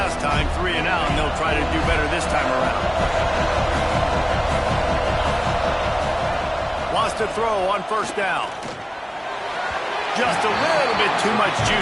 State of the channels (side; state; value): both; identical; correlation 1.00